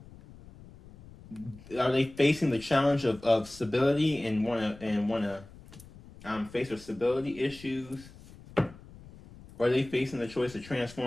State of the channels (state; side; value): noise; left; rumble, 20 dB below the sound